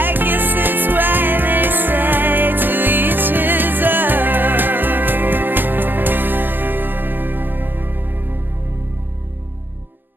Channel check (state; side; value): late; left; 0.094 ms